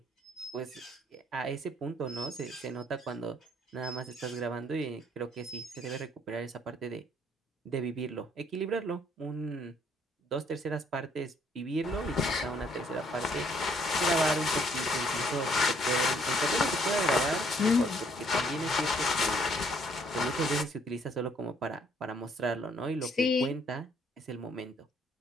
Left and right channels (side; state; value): both; normal; correlation 0.65